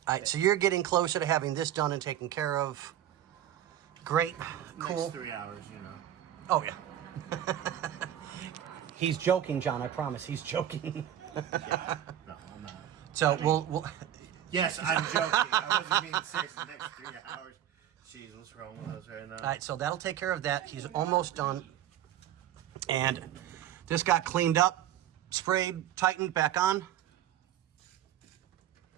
All right, so you're getting closer to having this done and taken care of. Great. Cool. Next 3 hours, you know. Oh, yeah. He's joking, John. I promise. He's joking. Yeah. No, I'm not. So we'll Yes, I'm joking. I wasn't being serious. The next 3 hours. Jeez, what's wrong with us right now? All right, so that'll take care of that. He's almost done. And this got cleaned up, sprayed, tightened, back on.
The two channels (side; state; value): left; quieter; 11.3 dB